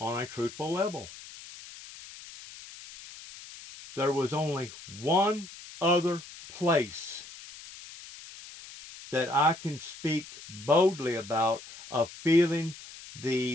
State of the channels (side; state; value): left; noise; hiss, 16 dB below the sound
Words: a truthful level. There was only one other place that I can speak boldly about of feeling